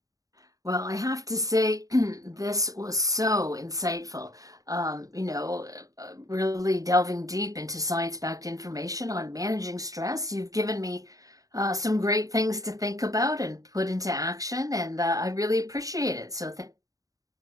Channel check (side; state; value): left; late; 0.17 ms